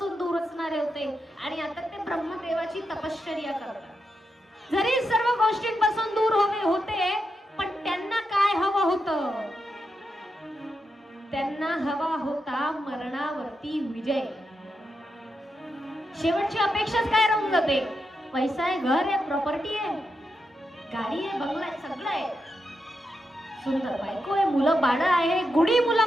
दूर असणारे होते. आणि आता ते ब्रह्मदेवाची तपश्चर्या करतात. जरी सर्व गोष्टींपासून दूर होते, पण त्यांना काय हवं होतं? त्यांना हवा होता मरणावरती विजय. शेवटची अपेक्षाच काय राहून जाते? पैसा आहे, घर आहे, प्रॉपर्टी आहे, गाडी आहे, बंगला आहे, सगळं आहे, सुंदर बायको आहे, मुलं बाळ आहे, गुढी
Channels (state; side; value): normal; both; correlation 0.85